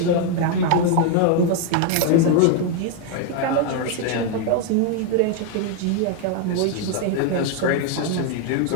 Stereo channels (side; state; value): both; different; correlation 0.01